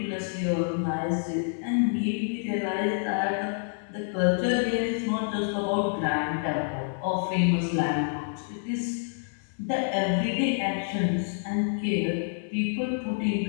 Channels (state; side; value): silent; right; 59 dB below the other